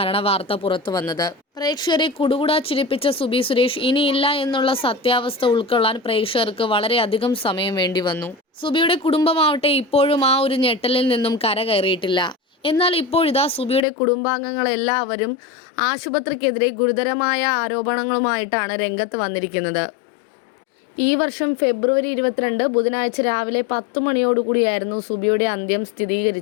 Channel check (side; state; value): right; drops out; at 13.9 s